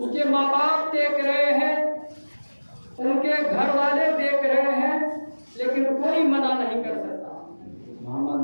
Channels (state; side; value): inverted; both; correlation -1.00